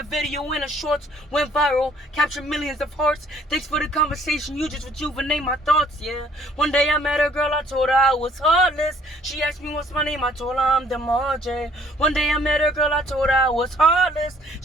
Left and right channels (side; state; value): both; normal; correlation 0.60